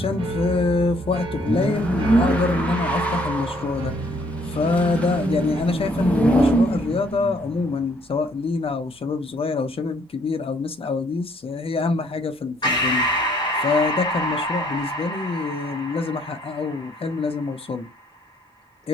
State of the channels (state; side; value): normal; both; correlation 0.65